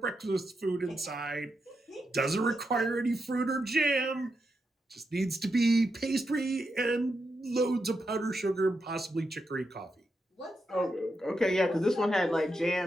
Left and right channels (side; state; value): both; normal; correlation 0.85